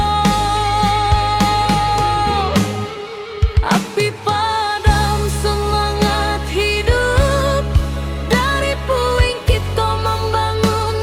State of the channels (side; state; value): both; identical; correlation 1.00